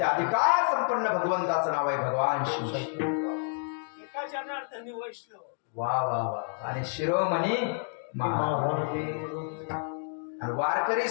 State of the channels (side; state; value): right; silent; 58 dB below the other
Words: अधिकार संपन्न भगवंताचं नाव आहे भगवान शिव. वा वा वा. आणि शिरोमणी महाराज. आणि वारकरी